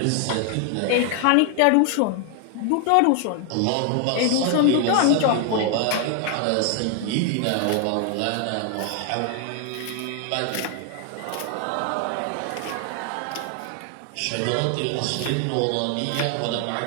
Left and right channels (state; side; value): different; both; correlation 0.00